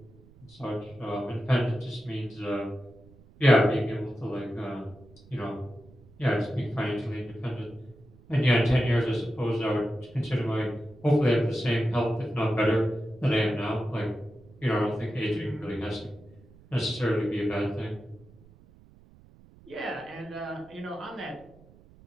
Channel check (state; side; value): noise; right; rumble, 25 dB below the sound